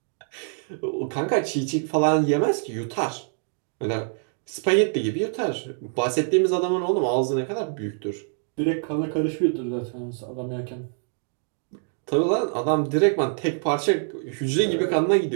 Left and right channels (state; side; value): silent; left; 62 dB below the other